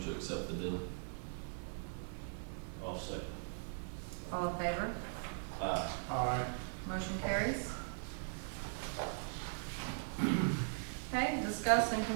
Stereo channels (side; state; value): left; silent; 51 dB below the other